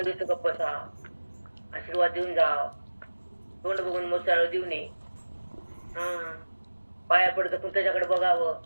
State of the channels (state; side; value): inverted; both; correlation -1.00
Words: देत गप्प बसा, आशीर्वाद देऊन जाव, तोंड बघून मोचाळ देऊ नये, पाया पडत पण त्याच्याकडे बघावं,